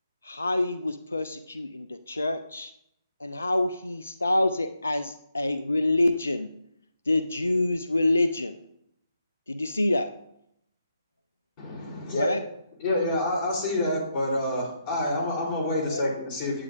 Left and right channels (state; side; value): inverted; both; correlation -0.83